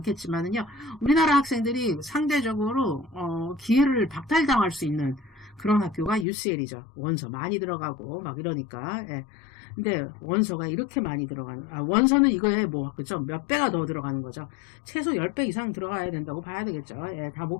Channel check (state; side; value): drops out; right; at 6.2 s